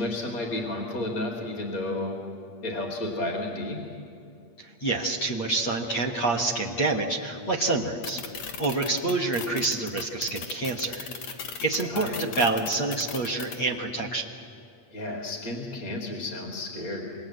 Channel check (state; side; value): late; right; 8.5 ms